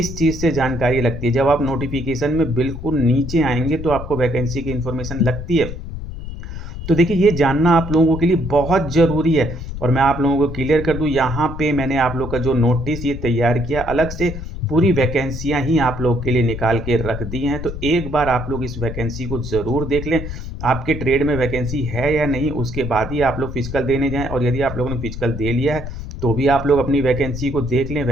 चीज़ से जानकारी लगती है। जब आप नोटिफिकेशन में बिल्कुल नीचे आएंगे तो आपको वैकेंसी की इन्फॉर्मेशन लगती है। तो देखिए ये जानना आप लोगों के लिए बहुत ज़रूरी है। और मैं आप लोगों को क्लियर कर दूं, यहाँ पे मैंने आप लोग का जो नोटिस ये तैयार किया, अलग से पूरी वैकेंसियाँ ही आप लोग के लिए निकाल के रख दी हैं। तो एक बार आप लोग इस वैकेंसी को ज़रूर देख लें। आपके ट्रेड में वैकेंसी है या नहीं, उसके बाद ही आप लोग फिजिकल देने जाएँ। और यदि आप लोगों ने फिजिकल दे लिया है तो भी आप लोग अपनी वैकेंसी को देख लें।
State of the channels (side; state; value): left; noise; rumble, 8 dB below the sound